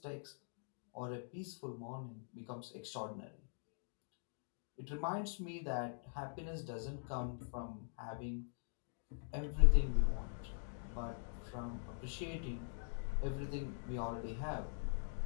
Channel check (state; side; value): silent; right; digital silence